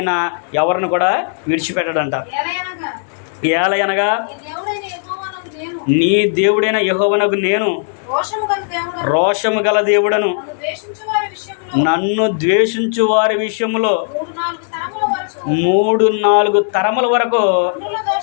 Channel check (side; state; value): right; silent; digital silence